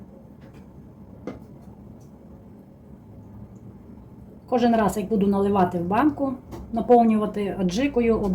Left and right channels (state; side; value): identical; both; correlation 1.00